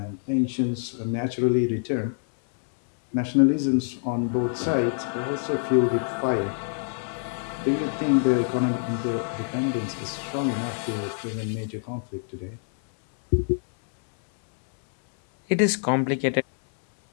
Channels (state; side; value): silent; right; digital silence